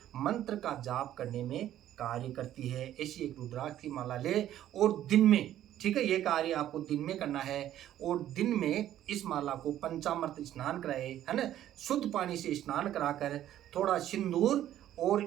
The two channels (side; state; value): left; quieter; 12.1 dB